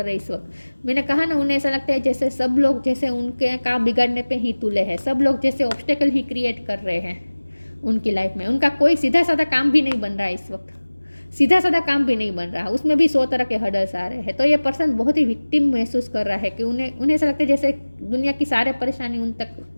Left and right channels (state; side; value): inverted; both; correlation -1.00